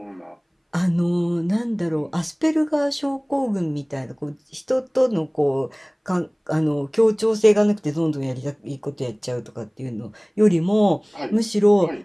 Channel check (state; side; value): identical; both; correlation 1.00